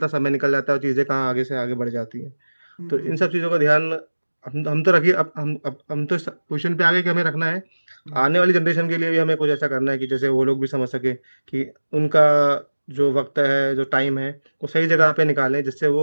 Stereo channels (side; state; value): both; inverted; correlation -1.00